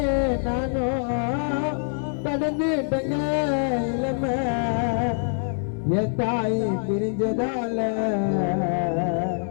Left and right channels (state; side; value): silent; right; 57 dB below the other